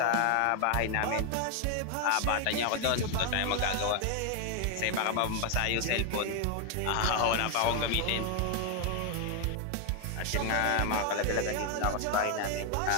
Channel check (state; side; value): different; both; correlation 0.00